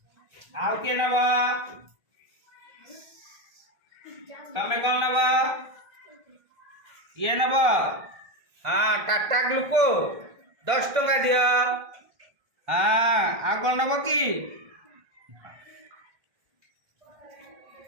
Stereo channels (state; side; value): late; left; 1.5 ms